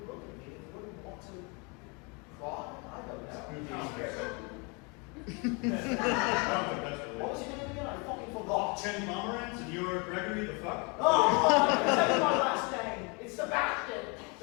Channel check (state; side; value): quieter; right; 31.4 dB